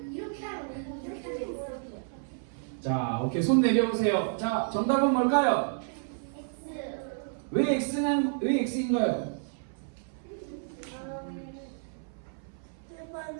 이렇게 하면 이렇게 자, 오케이. 손 내려오세요. 자, 정답은 뭘까요? 왜 X인가요? 스데반은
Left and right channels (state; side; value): silent; left; 57 dB below the other